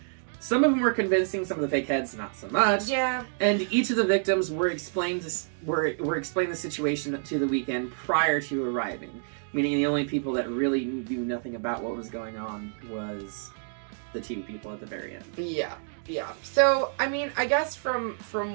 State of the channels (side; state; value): left; silent; digital silence